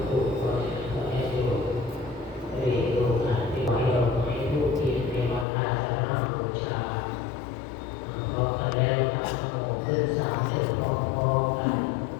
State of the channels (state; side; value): drops out; right; at 5.5 s